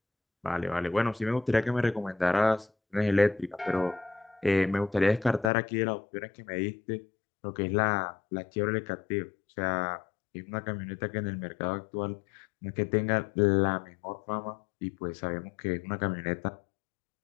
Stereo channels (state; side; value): drops out; right; at 5.5 s